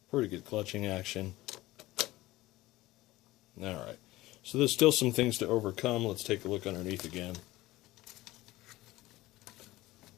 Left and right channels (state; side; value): quieter; right; 18.1 dB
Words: Pretty good clutching action. Alright, so there's still some things to overcome. Let's take a look underneath again.